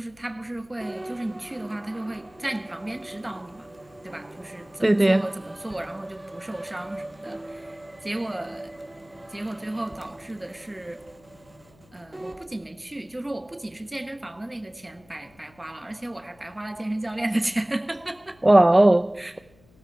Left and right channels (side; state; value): left; noise; hum, 29 dB below the sound